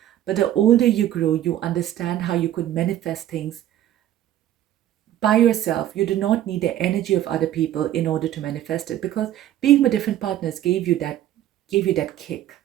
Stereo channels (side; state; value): left; quieter; 12.4 dB